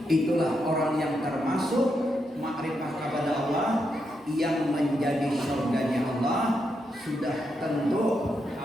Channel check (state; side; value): normal; both; correlation 0.82